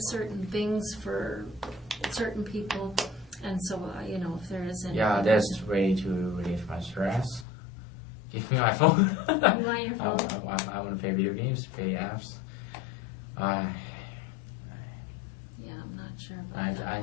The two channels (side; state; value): right; drops out; at 7.5 s